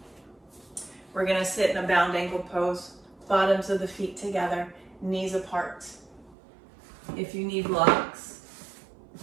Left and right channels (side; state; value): left; drops out; at 6.4 s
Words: We're gonna sit in a bound ankle pose, bottoms of the feet together, knees apart. If you need blocks,